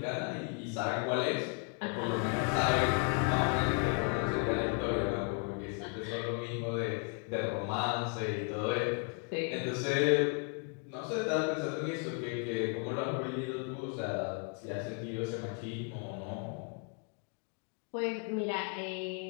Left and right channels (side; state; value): right; quieter; 38.9 dB